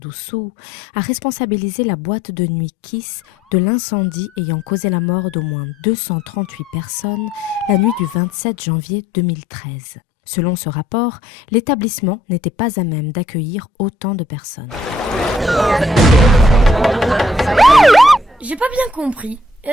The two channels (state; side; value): normal; both; correlation 0.66